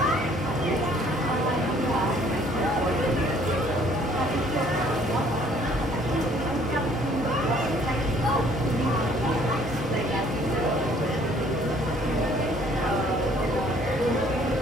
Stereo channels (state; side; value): normal; both; correlation 0.59